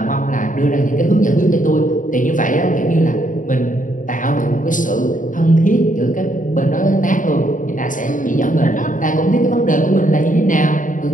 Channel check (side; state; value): right; late; 0.38 ms